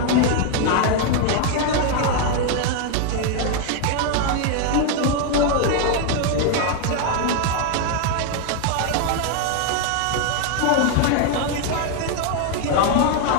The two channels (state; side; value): different; both; correlation 0.01